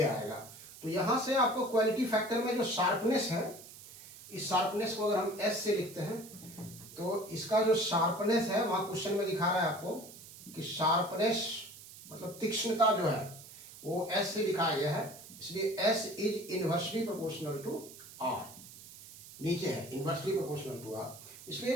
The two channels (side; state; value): right; noise; hiss, 17 dB below the sound